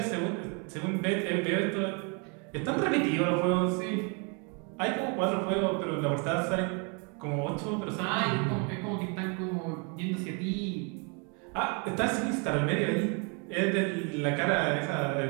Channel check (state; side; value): quieter; left; 34.7 dB